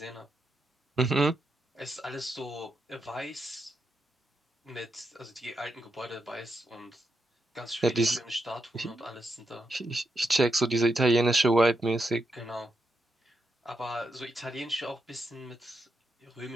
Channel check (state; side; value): normal; both; correlation 0.83